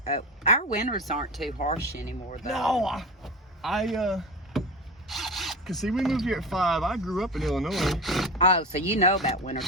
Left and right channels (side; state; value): both; normal; correlation 0.26